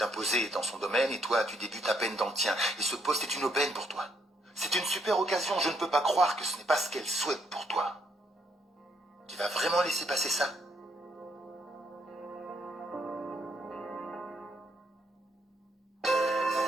imposée dans son domaine et toi, tu débutes à peine dans le tien. Et ce poste est une aubaine pour toi. C'est une super occasion, je ne peux pas croire que ce n'est pas ce qu'elle souhaite pour toi. Tu vas vraiment laisser passer ça?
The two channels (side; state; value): both; normal; correlation 0.72